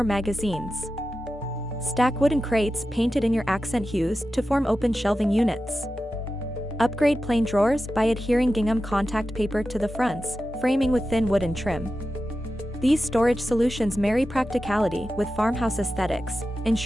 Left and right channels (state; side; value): normal; both; correlation 0.92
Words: magazines. Stack wooden crates painted in your accent hues to form open shelving units. Upgrade plain drawers by adhering gingham contact paper to the fronts, framing with thin wooden trim. These storage solutions marry practicality with farmhouse aesthetics,